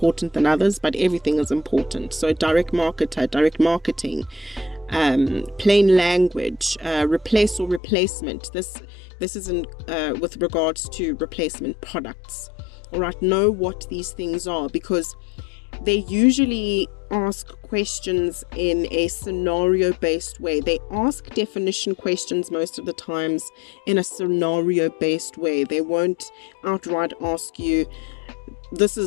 than others, but everything is important. So direct marketer, direct marketing, plain language, replace or replacement. This is in with regards to replacement products. All right, know what these things are, because they usually ask questions in a scenario-based way. They ask definition questions most of the times in a scenario-based way. They won't outright ask you, this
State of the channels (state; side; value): drops out; right; at 7.8 s